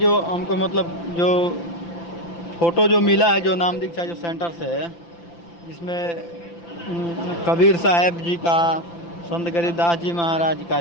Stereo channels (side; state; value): right; late; 5.9 ms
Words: हमको मतलब जो फ़ोटो जो मिला है जो नाम दीक्षा जो सेंटर से है जिसमें कबीर साहब जी का, संत गरीबदास जी महाराज का,